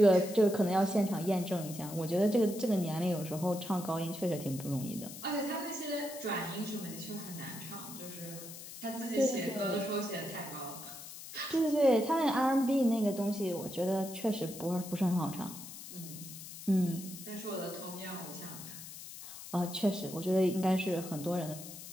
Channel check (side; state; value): left; noise; hiss, 12 dB below the sound